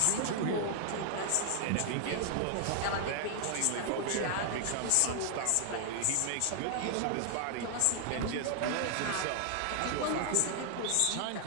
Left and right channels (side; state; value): both; different; correlation 0.00